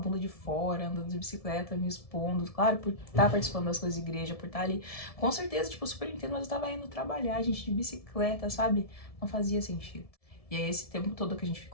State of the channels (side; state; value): right; late; 1.7 ms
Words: de fora, andando de bicicleta, me expondo, claro, por estar participando das coisas de igreja, por estar ali, com certeza, tipo, super entendo, mas eu tava indo trabalhar, gente, de bicicleta, sabe? Não fazia sentido. E aí, esse tempo todo que a gente